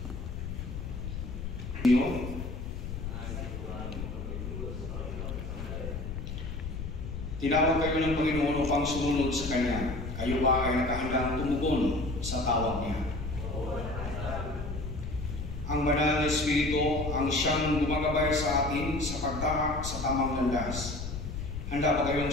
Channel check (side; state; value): left; noise; rumble, 6 dB below the sound